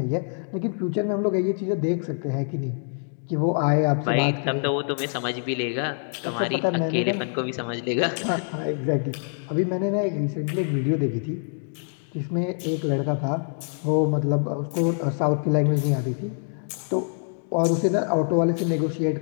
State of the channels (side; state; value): right; silent; digital silence